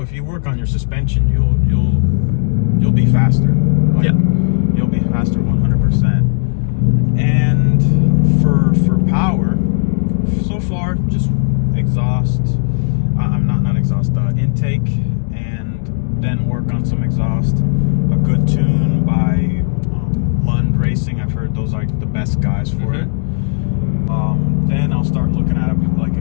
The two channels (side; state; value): right; silent; digital silence